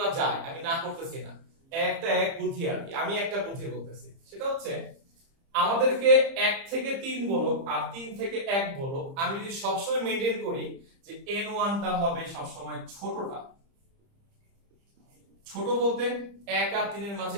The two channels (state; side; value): late; left; 30 ms